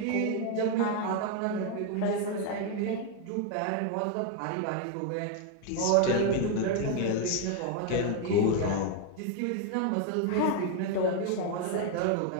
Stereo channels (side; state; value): both; different; correlation 0.01